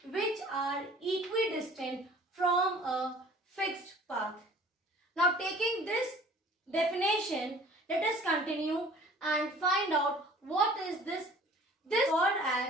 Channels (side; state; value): both; normal; correlation 0.49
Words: which are equidistant from a fixed path. Now, taking this definition, let us continue and find out what is this. This is called